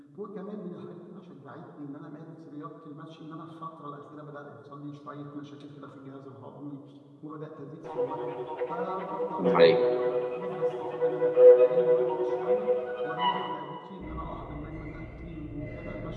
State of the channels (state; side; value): identical; both; correlation 1.00